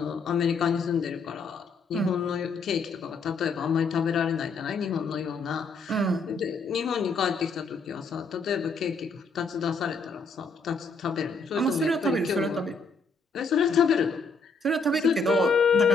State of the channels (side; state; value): right; quieter; 4.0 dB